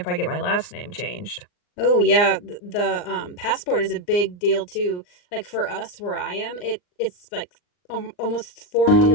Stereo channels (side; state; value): right; late; 39 ms